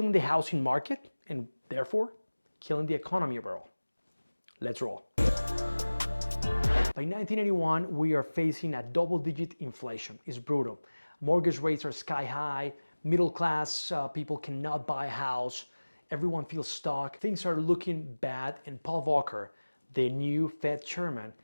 the housing market and therefore killing the economy overall. Let's roll. By 1981, we are facing a double-digit inflation. It's brutal. Mortgage rates are sky high. Middle class people cannot buy a house. Everyone feels stuck. Things are looking bad, and Paul Volcker, the new Fed chairman,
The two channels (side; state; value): both; inverted; correlation -1.00